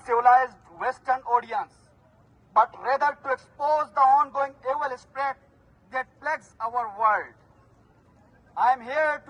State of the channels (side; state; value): both; identical; correlation 1.00